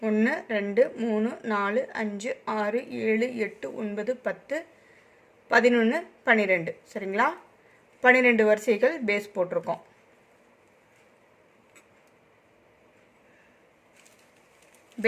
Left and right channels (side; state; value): both; identical; correlation 1.00